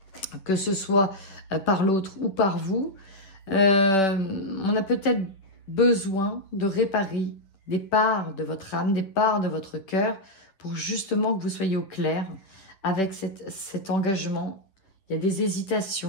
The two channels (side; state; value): right; late; 10 ms